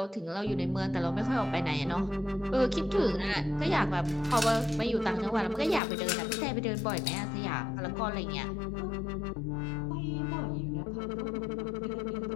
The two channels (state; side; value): drops out; right; at 5.8 s